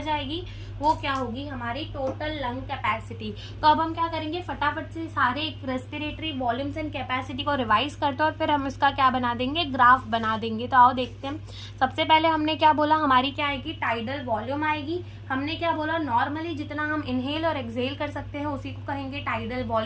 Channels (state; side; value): identical; both; correlation 1.00